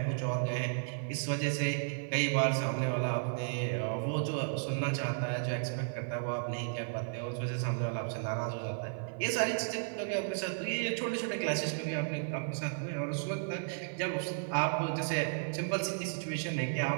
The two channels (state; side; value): silent; left; 55 dB below the other